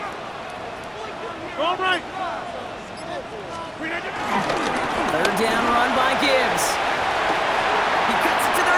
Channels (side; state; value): both; identical; correlation 1.00